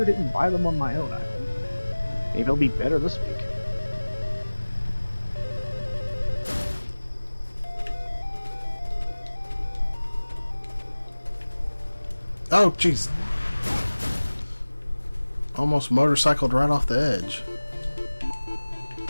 didn't buy them on my own island. Maybe it'll be better this week. Oh, jeez. Almost motorcycled right off the edge.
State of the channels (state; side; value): inverted; both; correlation -1.00